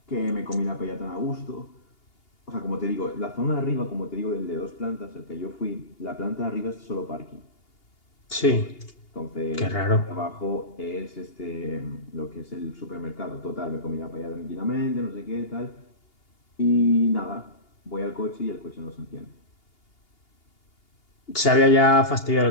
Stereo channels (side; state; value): right; late; 2.8 ms